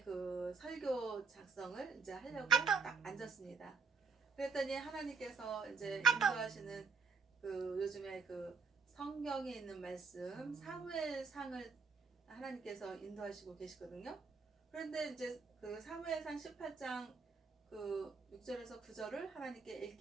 그 설교 작성을 이제 하려고 딱 앉았습니다. 그랬더니 하나님께서 이제 인도하시는 그 요즘에 그 성경에 있는 말씀 사무엘상을 하나님께서 인도하시고 계시거든요. 그런데 이제 그 사무엘상 18장 그 6절에서 9절을 하나님께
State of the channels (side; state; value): left; quieter; 4.7 dB